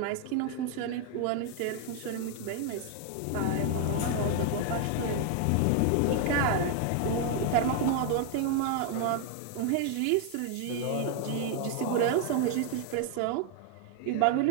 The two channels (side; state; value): both; different; correlation 0.00